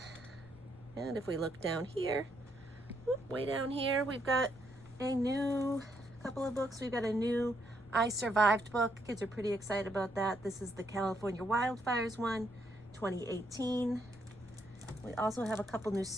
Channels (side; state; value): left; noise; rumble, 22 dB below the sound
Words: And if we look down here, way down here, we've got a new couple of books. We've got a new I Survived book. Kids are pretty excited about that. This is the California Wildfires one, 2018. We also have a couple new